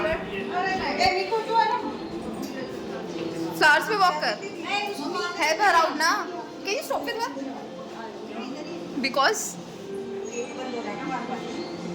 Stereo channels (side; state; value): both; identical; correlation 1.00